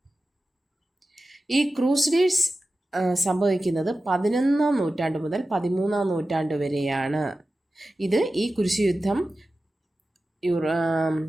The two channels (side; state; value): both; normal; correlation 0.94